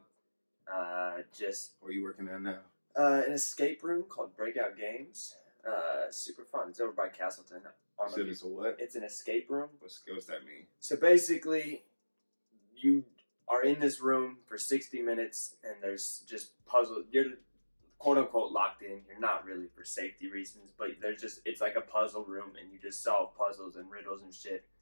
Just Where you working at now? an escape room called Breakout Games. Super fun. It's over by Castleton. So it's a what? It's an escape room. What's that mean? So basically, you are in this room for 60 minutes, and there's just puzzle. You're quote unquote locked in. You're not really for safety reasons, but it's like a puzzle room, and you just solve puzzles and riddles and shit,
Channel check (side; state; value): both; inverted; correlation -1.00